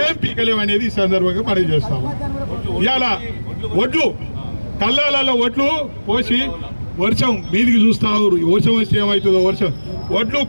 పీకలేం అనేది ఈ సందర్భంగా మనం చేస్తాము. ఇవాళ ఒడ్లు కళ్ళాలలో ఒడ్లు పోసి వర్షం మీదికి చూస్తావు, వర్షం వస్తే ఏమవుతుందో ఒడ్లు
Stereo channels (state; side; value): inverted; both; correlation -1.00